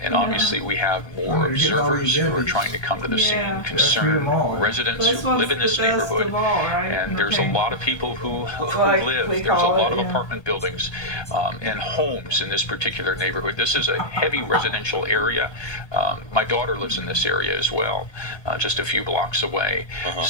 And obviously we have more observers who are trying to come to the scene, concerned residents who live in this neighborhood, and there's a lot of people who live. There's a lot of apartment buildings and homes in this particular neighborhood. This is a heavy residential area. My daughter lives in this area as well, just a few blocks away.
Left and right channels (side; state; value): right; late; 1.3 ms